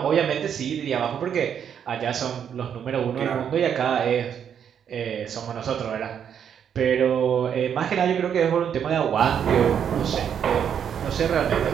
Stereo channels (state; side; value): quieter; left; 8.3 dB